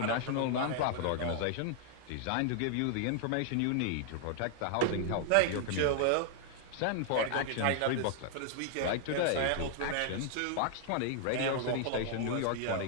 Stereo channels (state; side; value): different; both; correlation 0.00